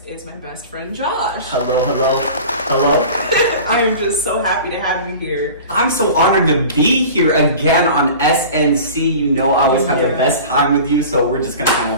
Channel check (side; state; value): both; inverted; correlation -0.38